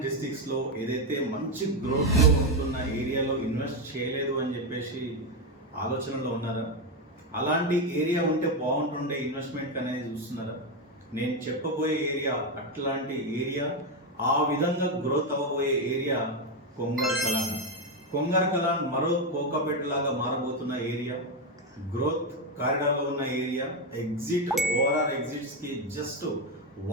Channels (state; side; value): normal; both; correlation 0.08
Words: డిస్ట్రిక్ట్స్లో ఏదైతే మంచి గ్రోత్లో ఉంటున్న ఏరియాలో ఇన్వెస్ట్ చేయలేదు అని చెప్పేసి ఆలోచనలో ఉన్నారా? అలాంటి ఏరియా ఉంటే బాగుంటుండే ఇన్వెస్ట్మెంట్ అనేది చూస్తున్నారా? నేను చెప్పబోయే ఏరియా అట్లాంటి ఏరియా, ఆ విధంగా గ్రోత్ అవ్వబోయే ఏరియా కొంగర్ కలాన్. కొంగర్ కలాన్ మరో కోకాపేట లాగా మారబోతున్న ఏరియా, గ్రోత్ కారిడార్లో ఉన్న ఏరియా, ఓఆర్ఆర్ ఎగ్జిట్స్కి జస్ట్